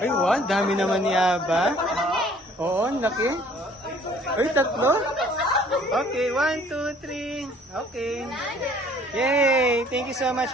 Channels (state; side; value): normal; both; correlation 0.56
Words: Ay, wow. Dami naman ni Aba. Oo, ang laki. Ay, tatlo. Okay, 1, 2, 3. Okay. Yay! Thank you so